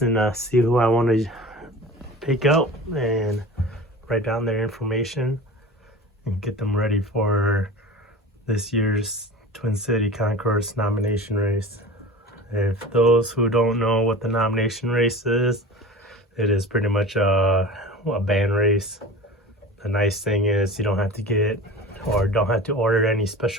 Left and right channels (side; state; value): both; normal; correlation 0.36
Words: and see who I want to pick out and write down their information and get them ready for this year's Twin City Concourse nomination race. If those who don't know what the nomination race is, it is pretty much a band race. The nice thing is you don't have to get or don't have to order any